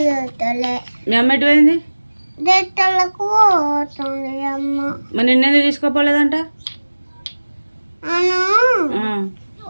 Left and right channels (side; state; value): both; inverted; correlation -1.00